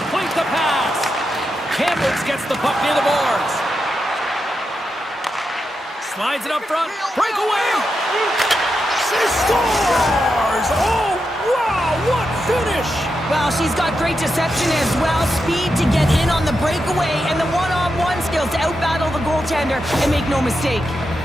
the pass. Kamloops gets the puck near the boards. Slides it up front. Breakaway. She scores. Oh, wow. What finish. Well, she's got great deception as well, speed to get in on the breakaway, and the one-on-one skills to outbattle the goaltender and make no mistake.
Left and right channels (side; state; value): both; normal; correlation 0.87